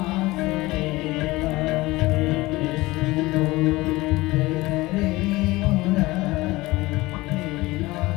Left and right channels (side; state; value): right; quieter; 20.3 dB